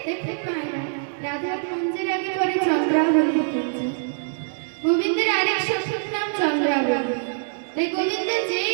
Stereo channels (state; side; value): silent; left; digital silence